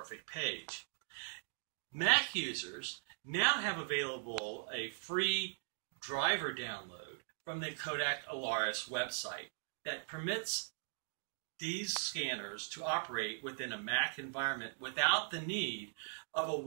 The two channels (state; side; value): silent; left; digital silence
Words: Page. Mac users now have available a free driver download from the Kodak Alaris website that permits these scanners to operate within a Mac environment without the need of a